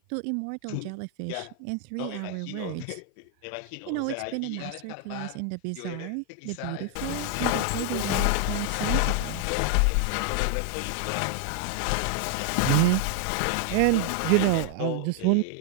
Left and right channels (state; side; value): different; both; correlation 0.00